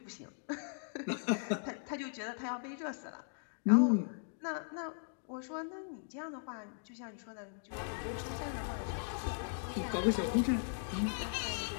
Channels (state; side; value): silent; right; digital silence